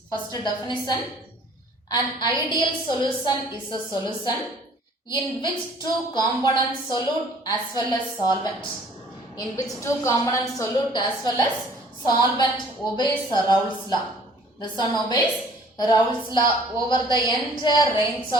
First definition. An ideal solution is a solution in which two components, solute as well as solvent. In which two components, solute as well as solvent obeys Raoult's law. This one obeys Raoult's law over the entire range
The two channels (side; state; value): both; normal; correlation 0.55